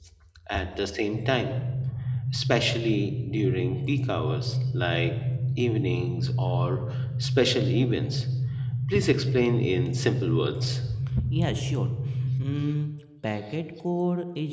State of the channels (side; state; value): both; identical; correlation 1.00